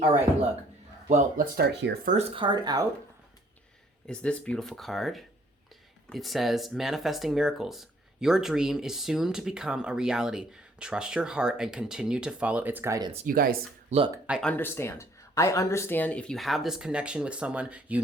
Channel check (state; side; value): normal; both; correlation 0.62